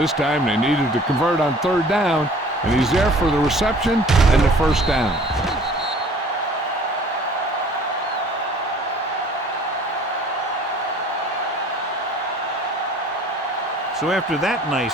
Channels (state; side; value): normal; both; correlation 0.50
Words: time they needed to convert on third down, and he's there for the reception and the first down. So after that nice